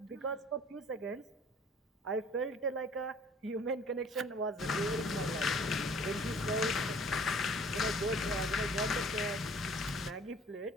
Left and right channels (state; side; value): normal; both; correlation 0.52